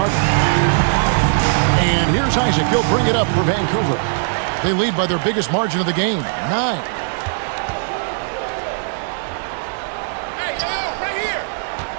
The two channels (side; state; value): left; silent; digital silence